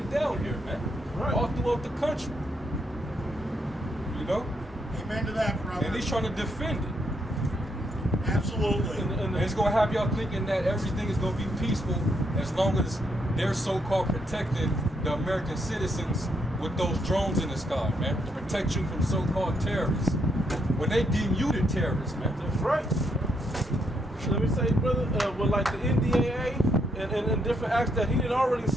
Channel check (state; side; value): normal; both; correlation 0.76